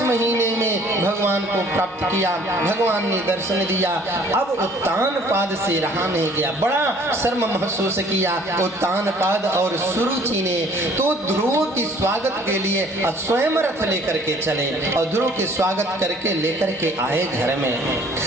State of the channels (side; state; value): both; normal; correlation 0.55